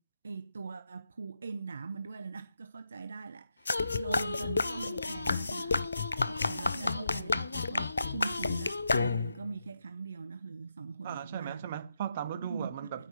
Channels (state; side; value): inverted; both; correlation -0.83